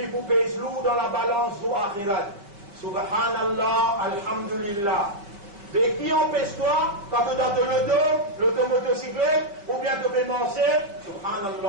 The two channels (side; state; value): left; late; 5.1 ms